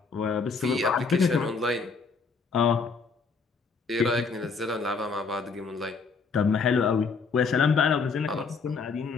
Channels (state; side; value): quieter; right; 4.8 dB